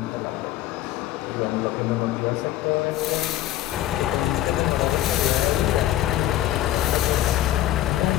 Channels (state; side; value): quieter; right; 13.5 dB